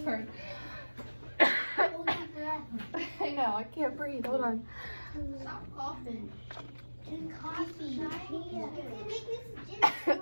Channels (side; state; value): both; inverted; correlation -1.00